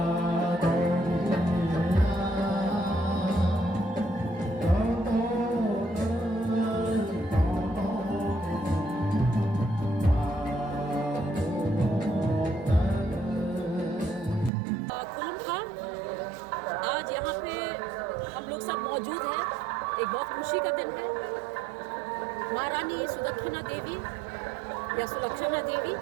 आज यहाँ पे हम लोग सब मौजूद हैं। एक बहुत खुशी का दिन है। महारानी सुदक्षिणा देवी या सुलक्षणा देवी,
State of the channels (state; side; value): drops out; left; at 14.5 s